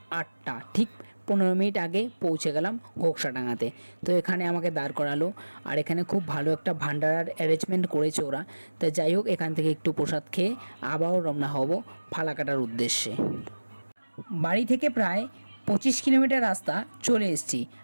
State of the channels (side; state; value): both; inverted; correlation -1.00